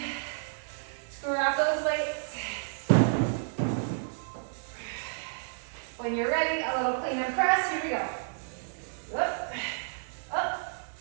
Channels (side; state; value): left; silent; digital silence